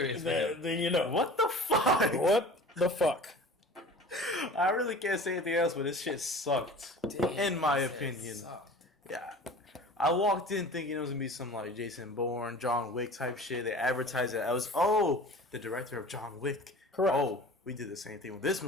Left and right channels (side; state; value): both; normal; correlation 0.41